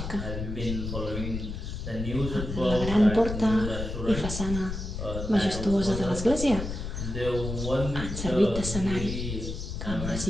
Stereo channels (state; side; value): noise; left; rumble, 5 dB below the sound